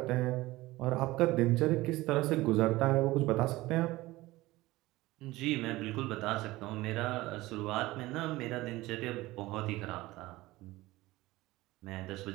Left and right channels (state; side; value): quieter; left; 18.7 dB